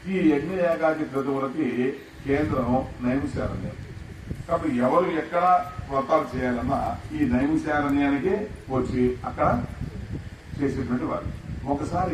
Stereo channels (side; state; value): both; identical; correlation 1.00